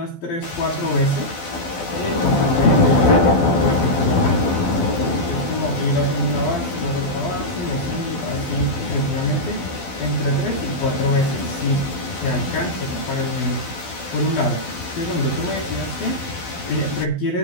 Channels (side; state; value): right; late; 12 ms